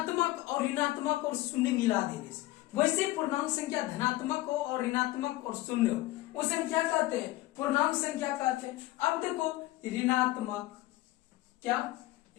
और ऋणात्मक और शून्य मिला देने से वैसे पूर्णांक संख्या धनात्मक हो और ऋणात्मक और शून्य हो उसे हम क्या कहते हैं, पूर्णांक संख्या कहते हैं। अब देखो ऋणात्मक, क्या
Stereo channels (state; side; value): quieter; right; 17.6 dB